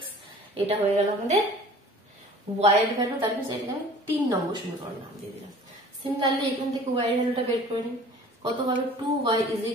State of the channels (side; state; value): both; normal; correlation 0.47